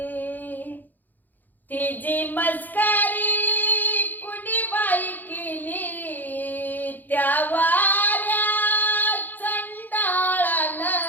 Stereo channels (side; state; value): right; late; 0.086 ms